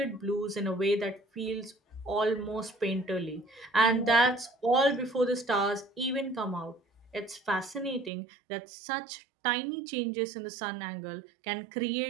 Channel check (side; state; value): left; drops out; at 8.1 s